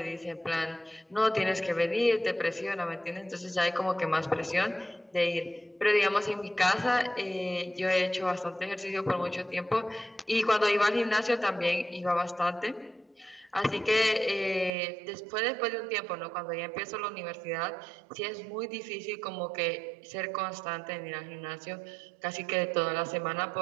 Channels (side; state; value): left; drops out; at 14.7 s